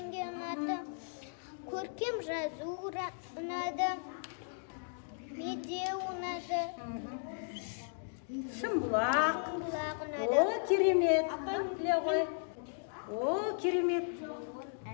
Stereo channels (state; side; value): silent; right; digital silence